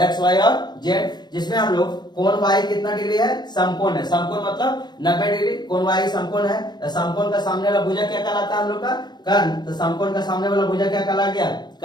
वाई और जेड, जिसमें हम लोग कोण वाई कितना डिग्री है समकोण है, समकोण मतलब 90 डिग्री, कोण वाई समकोण है, तो समकोण का सामने वाला भुजा क्या कहलाता है हम लोग का कर्ण, तो समकोण का सामने वाला भुजा क्या कहला गया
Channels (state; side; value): late; right; 0.21 ms